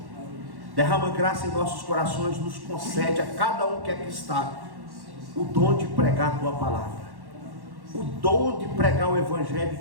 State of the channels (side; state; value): left; late; 1.1 ms